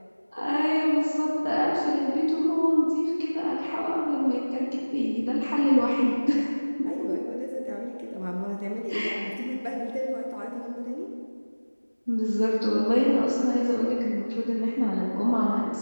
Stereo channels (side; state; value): both; inverted; correlation -1.00